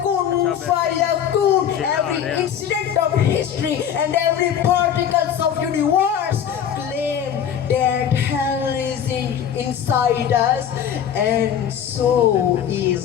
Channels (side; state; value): right; quieter; 8.9 dB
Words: Kun Fayakun, every incident of history and every particles of universe claim that hell is inside us, and so